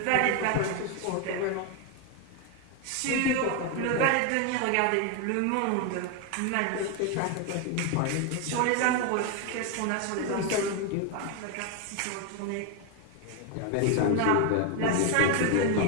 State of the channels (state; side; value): different; both; correlation 0.01